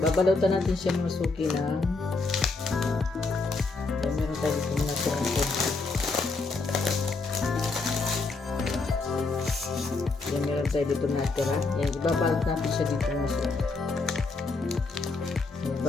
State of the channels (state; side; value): quieter; right; 3.8 dB